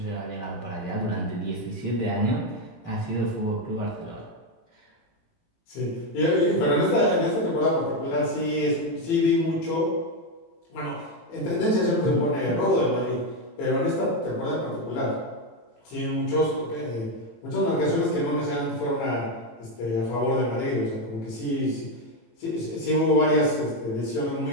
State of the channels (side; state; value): right; late; 18 ms